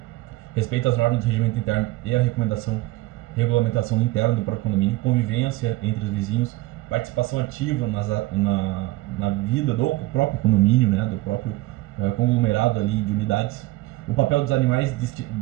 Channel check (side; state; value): left; quieter; 19.2 dB